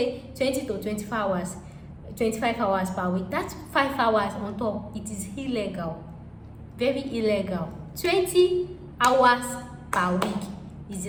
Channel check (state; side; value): identical; both; correlation 1.00